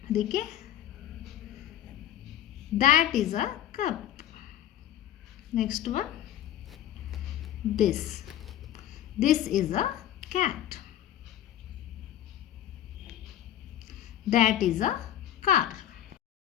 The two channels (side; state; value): right; quieter; 11.7 dB